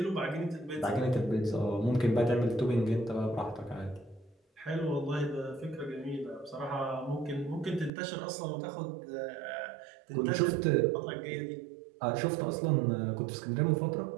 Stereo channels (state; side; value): drops out; left; at 7.9 s